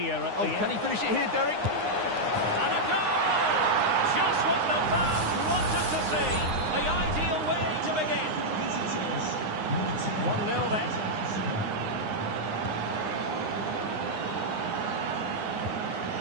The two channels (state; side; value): late; left; 9.7 ms